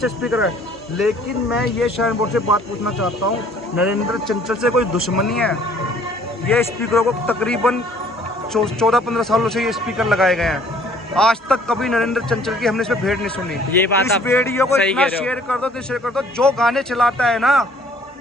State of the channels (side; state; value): both; normal; correlation 0.57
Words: स्पीकर है, लेकिन मैं ये शरण बोर्ड से बात पूछना चाहता हूँ, नरेंद्र चंचल से कोई दुश्मनी है? ये स्पीकरों को तकरीबन 14-15 सालों से ये स्पीकर लगाए गए हैं, आज तक कभी नरेंद्र चंचल की हमने इसमें भेंट नहीं सुनी। ये बात इस आप वीडियो को सही इतना कह रहे हो। शेयर कर दो, तो शेयर कर दो, जो गाने चलाता है ना